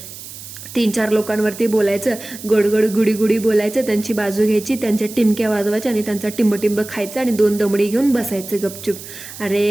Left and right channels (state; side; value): noise; right; hiss, 14 dB below the sound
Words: 3-4 लोकांवरती बोलायचं, गुडी बोलायचं, त्यांची बाजू घ्यायची, त्यांच्या टिमक्या वाजवायच्या आणि त्यांचा टिंब खायचं आणि 2 दमडी घेऊन बसायचं गपचूप.